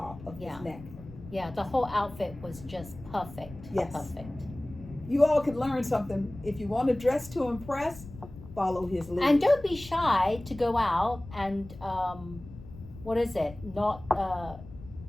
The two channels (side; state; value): left; noise; rumble, 16 dB below the sound